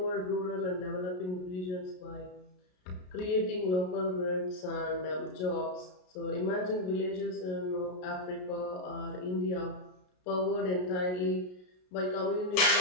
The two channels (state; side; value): late; right; 33 ms